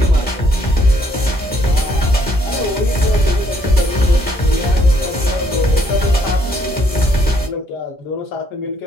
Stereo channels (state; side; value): normal; both; correlation 0.68